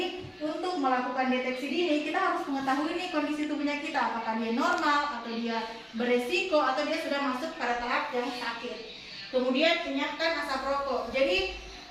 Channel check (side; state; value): both; identical; correlation 1.00